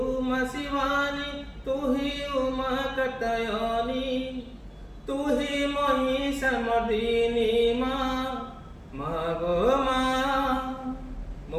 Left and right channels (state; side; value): identical; both; correlation 1.00